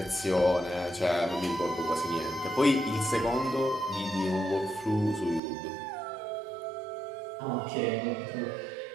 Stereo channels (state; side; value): drops out; left; at 5.4 s